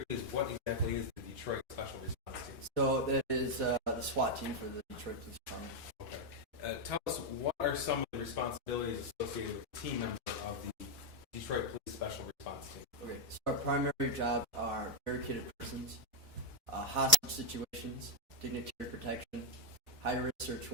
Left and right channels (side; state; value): both; normal; correlation -0.01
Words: please, what exactly is the Detroit Special Response Team? So that is the SWAT team for the Detroit Police Department. Okay. Tell us, what are some of the responsibilities associated with the team member of the Detroit Police Special Response Team? Okay, so our primary jobs are barricaded persons, hostage situations, dignitary protection, high-risk search